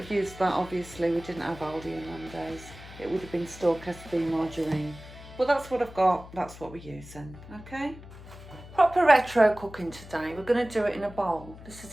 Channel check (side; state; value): left; noise; hum, 16 dB below the sound